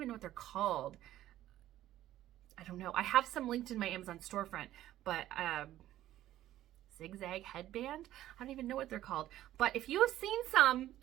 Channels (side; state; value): left; quieter; 13.6 dB